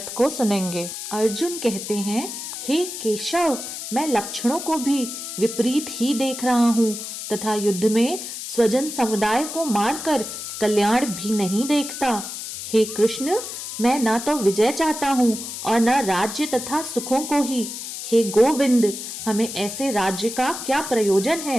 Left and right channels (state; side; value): noise; left; hiss, 8 dB below the sound